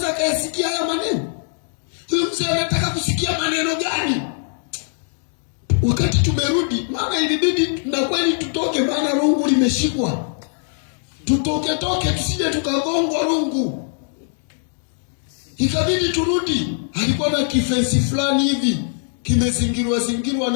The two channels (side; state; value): right; silent; digital silence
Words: akayasikia haya maneno. Huyu mzee anataka kusikia maneno gani? Wakati tumerudi, maana ilibidi na kweli tutoke, maana rungu limeshikwa. Tutoke tusije tukagongwa rungu. Ikabidi turudi. Alikuwa na kifensi fulani hivi kimezingirwa